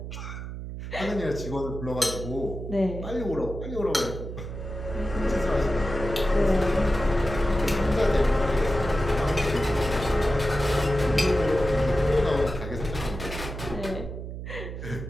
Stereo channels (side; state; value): right; noise; hum, 8 dB below the sound